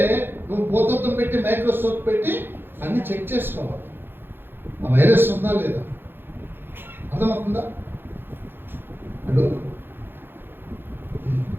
నువ్వు భూతత్వం పెట్టి మైక్రోస్కోప్ పెట్టి అన్ని చెక్ చేసుకోవాలి, ఆ వైరస్ ఉందా లేదా. అర్థమవుతుందా? అడు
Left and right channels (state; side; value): late; left; 0.10 ms